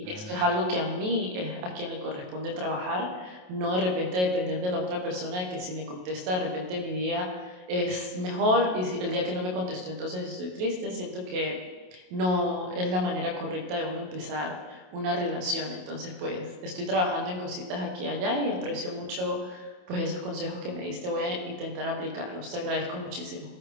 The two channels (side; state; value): left; late; 27 ms